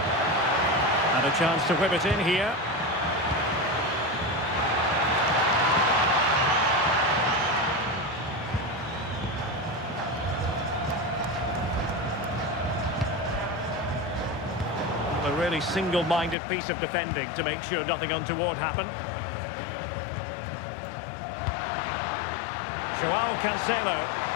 And a chance to whip it in here. They're really single-minded piece of defending to make sure nothing untoward happened. Joao Cancelo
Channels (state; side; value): drops out; right; at 16.4 s